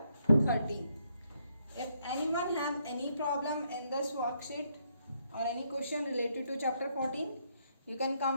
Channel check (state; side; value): inverted; both; correlation -0.74